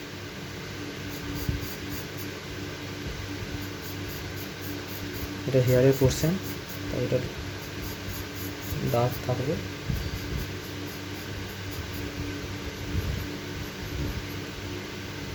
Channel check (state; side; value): identical; both; correlation 1.00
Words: এটা হেয়ারের পোর্শন, তাই এটা ডার্ক থাকবে।